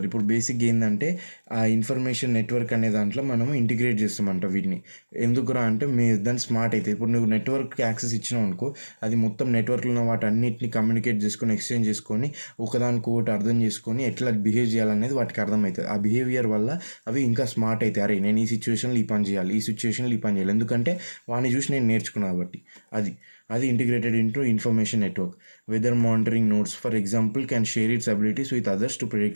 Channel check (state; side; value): inverted; both; correlation -1.00